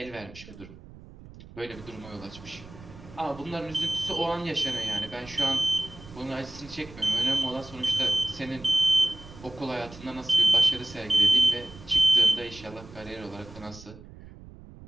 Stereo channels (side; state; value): right; noise; rumble, 18 dB below the sound